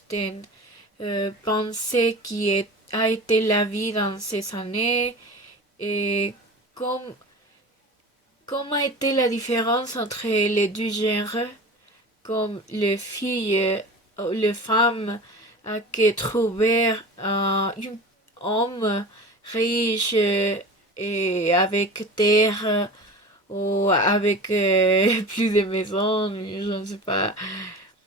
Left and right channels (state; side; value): normal; both; correlation 0.34